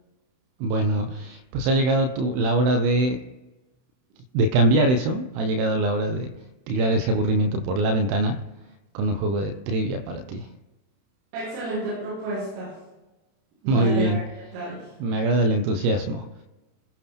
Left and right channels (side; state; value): left; late; 31 ms